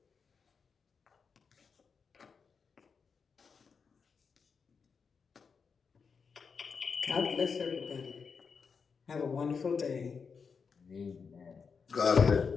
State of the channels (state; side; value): quieter; right; 5.6 dB